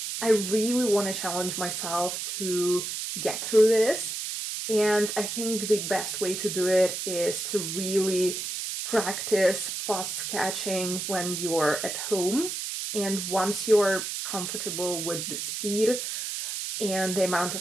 I really want to challenge myself to get through this. And I think the best way to do it is to really practice fast sketching when you're at home. And once you're comfortable with the speed and the amount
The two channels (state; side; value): noise; right; hiss, 4 dB below the sound